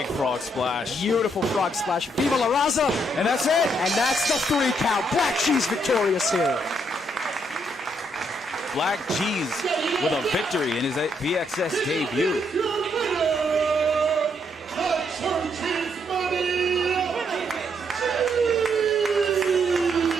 frog splash. Beautiful frog splash. Viva la Raza. And that's it. And that's the 3 count. Black G's victorious here. Black G's with a victory in his VxS debut.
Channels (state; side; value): normal; both; correlation 0.74